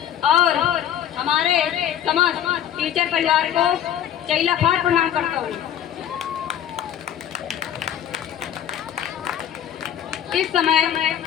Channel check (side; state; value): right; quieter; 10.3 dB